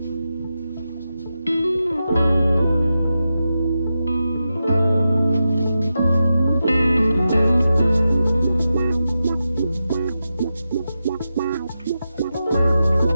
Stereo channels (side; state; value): both; inverted; correlation -0.90